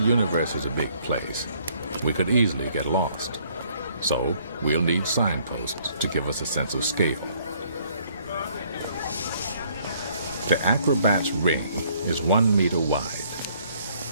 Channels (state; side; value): inverted; both; correlation -0.63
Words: is a big place, we could easily get lost. So we'll need signposts to give us a sense of scale. The acrobat's ring is 1 meter wide.